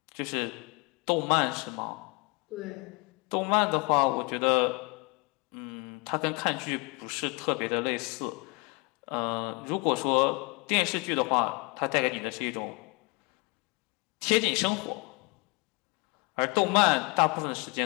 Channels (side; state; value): right; quieter; 28.2 dB